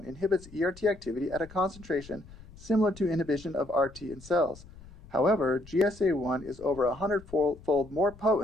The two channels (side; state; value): left; noise; rumble, 20 dB below the sound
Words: inhibits ERT activity at a concentration similar to inhibition of RT in cells. However, GSA1 is over 100-fold more